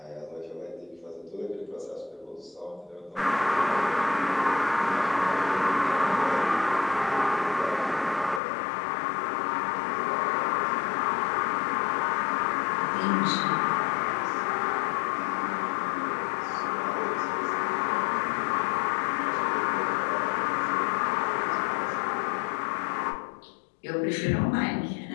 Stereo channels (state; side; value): drops out; right; at 8.4 s